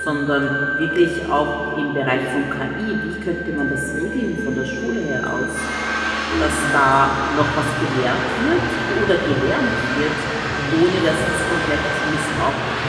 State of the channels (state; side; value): identical; both; correlation 1.00